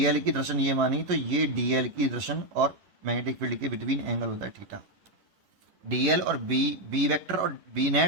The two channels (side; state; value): left; late; 10 ms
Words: की दर्शन ये मानी, तो ये डीएल की दर्शन और मैग्नेटिक फील्ड के बिटवीन एंगल होता है थीटा। डीएल और बी वेक्टर और बी